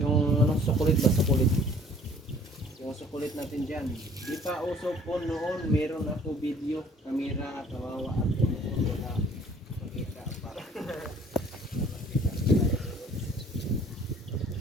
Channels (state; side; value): normal; both; correlation 0.55